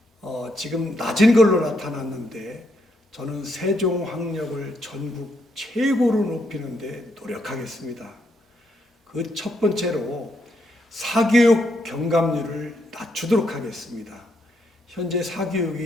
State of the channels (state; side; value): normal; both; correlation 0.77